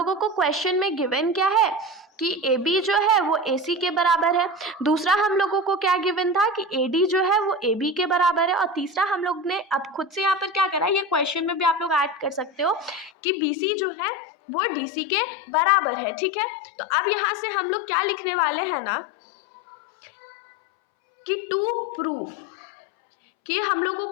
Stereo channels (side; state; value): right; drops out; at 13.1 s